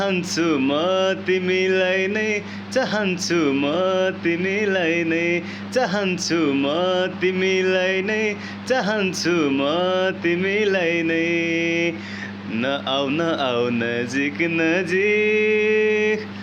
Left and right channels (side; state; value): both; identical; correlation 1.00